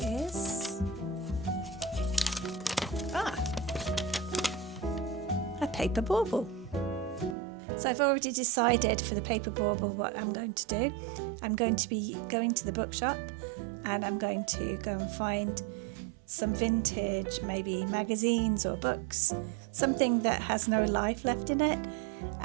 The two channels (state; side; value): drops out; left; at 7.4 s